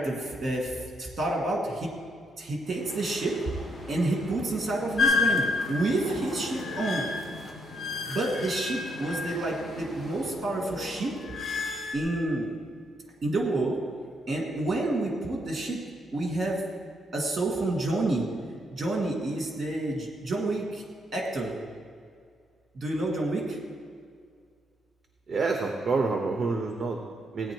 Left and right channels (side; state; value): both; normal; correlation 0.76